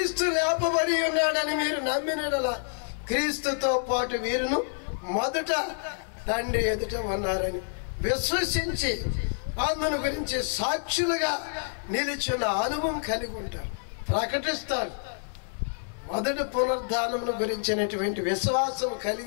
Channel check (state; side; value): silent; right; 59 dB below the other